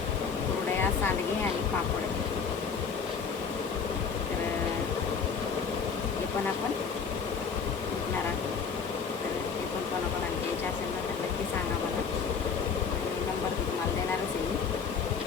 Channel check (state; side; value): quieter; right; 6.0 dB